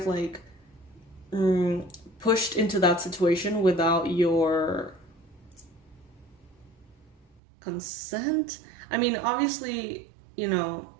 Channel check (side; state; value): left; drops out; at 7.2 s